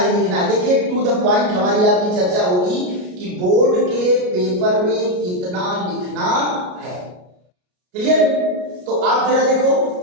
लिखना है। देखिए टू द पॉइंट हमारी आपकी चर्चा होगी कि बोर्ड के पेपर में कितना लिखना है। क्लियर? तो आप जरा देखो,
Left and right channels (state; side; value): late; left; 33 ms